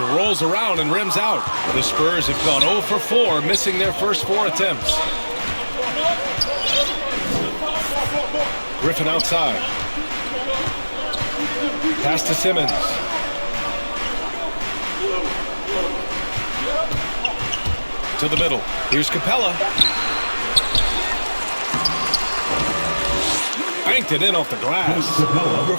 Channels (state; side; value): inverted; both; correlation -1.00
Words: rolls around and rims out. The Spurs have gone 0 for 4, missing their first 4 attempts. Griffin outside. Pass to Simmons. To the middle. Here's Capella. Banked it in off the glass.